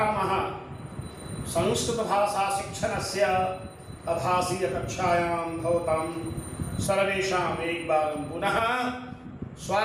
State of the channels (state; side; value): identical; both; correlation 1.00